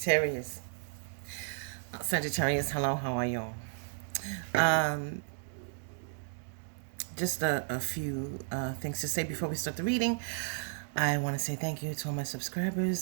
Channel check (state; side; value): silent; left; digital silence